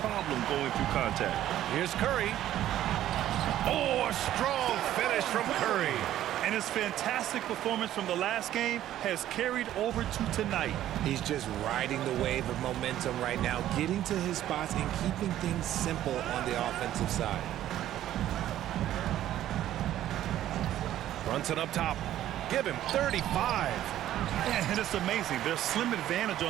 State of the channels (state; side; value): quieter; left; 12.6 dB